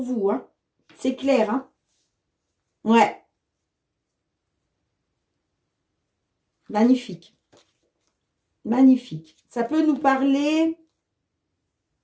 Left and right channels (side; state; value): both; identical; correlation 1.00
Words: vous. Hein. C'est clair. Hein. Ouais. Magnifique. Magnifique. Ça peut nous parler...